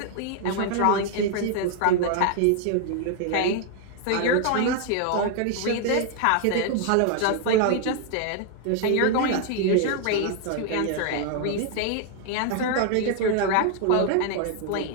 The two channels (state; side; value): different; both; correlation 0.00